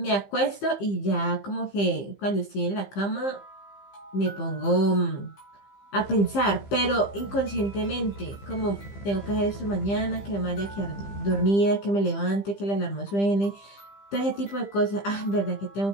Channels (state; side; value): late; right; 15 ms